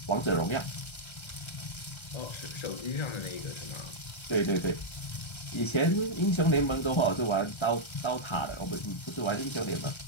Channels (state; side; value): late; right; 1.3 ms